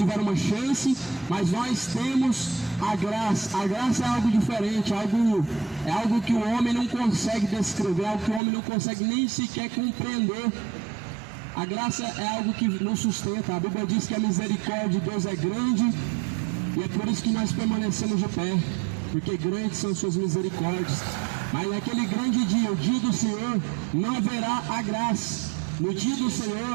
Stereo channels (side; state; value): left; drops out; at 8.4 s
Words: uma chance, mas nós temos a graça. A graça é algo diferente, é algo que o homem não consegue descrever, algo que o homem não consegue nem sequer compreender. A graça é algo que nos sustenta. A Bíblia diz que a misericórdia de Deus é grande, e é por isso que nós permanecemos de pé, porque grandes são suas misericórdias. Mas naquele grande dia, o dia do Senhor, não haverá a graça. No dia do